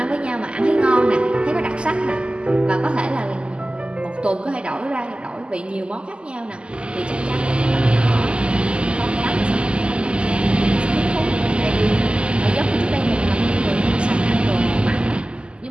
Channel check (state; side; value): late; left; 0.052 ms